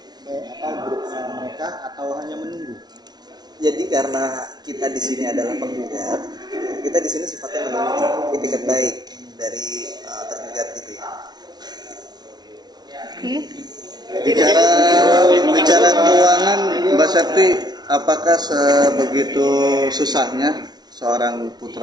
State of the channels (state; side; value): late; left; 0.19 ms